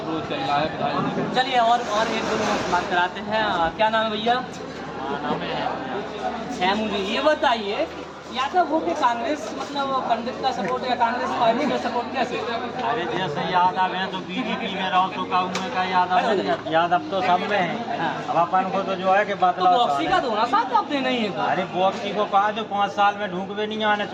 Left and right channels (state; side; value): identical; both; correlation 1.00